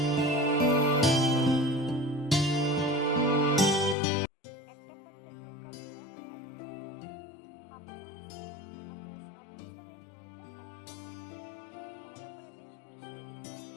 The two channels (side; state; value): right; drops out; at 4.0 s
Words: একটা পাত্রে 2 কাপ জল অ্যাড করতে হবে। হাফ চামচ নুন, আপনার স্বাদ অনুসারে নুনটা অ্যাড করবেন। ভালো করে বেশ মিশিয়ে দিতে